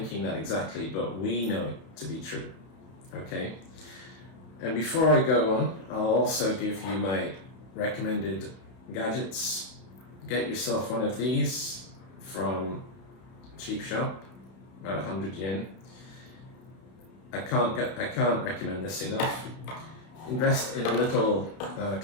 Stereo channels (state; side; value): late; right; 31 ms